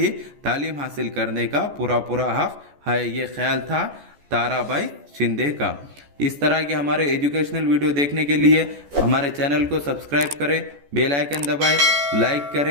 तालीम हासिल करने का पूरा हक है। ये ख्याल था ताराबाई शिंदे का। इस तरह के हमारे एजुकेशनल वीडियो देखने के लिए हमारे चैनल को सब्सक्राइब करें, बेल आइकन दबाएं, लाइक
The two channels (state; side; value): late; left; 14 ms